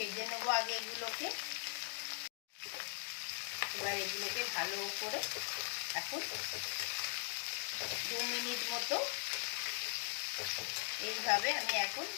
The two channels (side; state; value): right; silent; digital silence